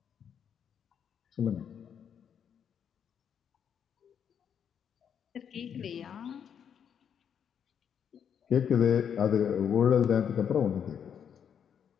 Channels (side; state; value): right; quieter; 8.0 dB